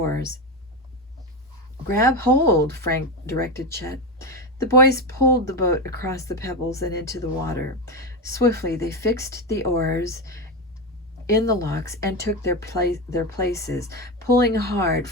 "Grab hold," Frank directed Chet. The boys pulled the boat across the pebbles and into the water. Swiftly they fixed the oars in the locks and took their places. Pulling hard,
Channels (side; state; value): both; normal; correlation 0.15